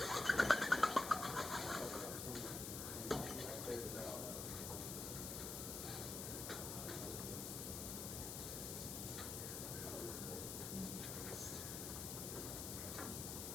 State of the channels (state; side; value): noise; left; hiss, 4 dB below the sound